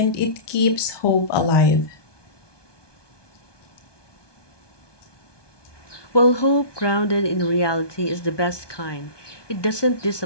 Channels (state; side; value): late; right; 1.2 ms